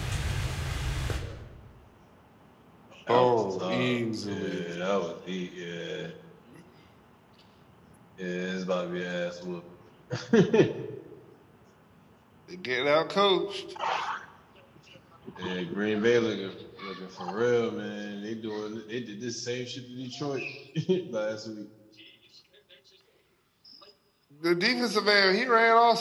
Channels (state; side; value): identical; both; correlation 1.00